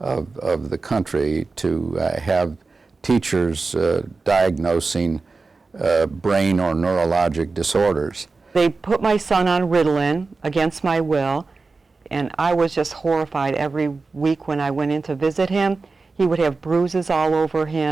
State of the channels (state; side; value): quieter; left; 4.0 dB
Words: the country to have teachers diagnosing brain or neurologic disorders. They put my son on Ritalin against my will, and I was just horrified every week when I went in to visit him. He would have bruises all over